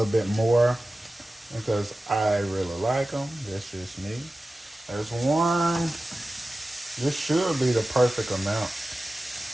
bit more because I really like them. That's just me. There's 1. This should be the perfect amount.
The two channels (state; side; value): normal; both; correlation 0.95